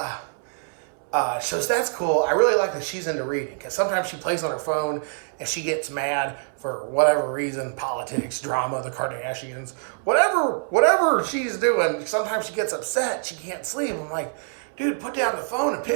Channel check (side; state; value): left; silent; 61 dB below the other